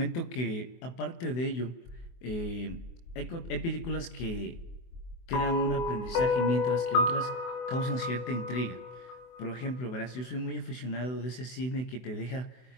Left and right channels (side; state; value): right; late; 24 ms